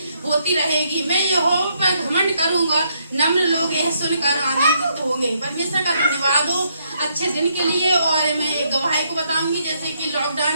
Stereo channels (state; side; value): inverted; both; correlation -0.74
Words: होती रहेगी। मैं यहोवा पर घमंड करूंगा, नम्र लोग यह सुनकर आनंदित होंगे। परमेश्वर का धन्यवाद हो अच्छे दिन के लिए। और मैं एक गवाही को बताऊंगी, जैसे कि लॉकडाउन